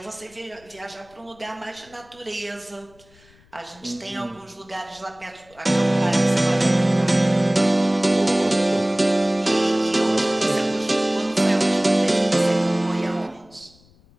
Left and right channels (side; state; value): left; noise; rumble, 29 dB below the sound